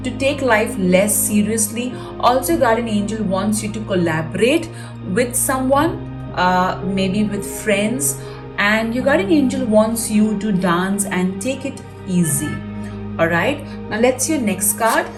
to take life less seriously. Also, your guardian angel wants you to collaborate with someone, maybe with friends, and your guardian angel wants you to dance and take it easy. All right, now let's see your next card.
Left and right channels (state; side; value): identical; both; correlation 1.00